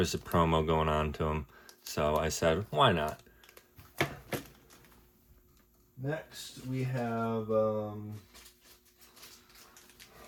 a promo going on to them, so I said, why not? Next, we have a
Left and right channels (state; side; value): identical; both; correlation 1.00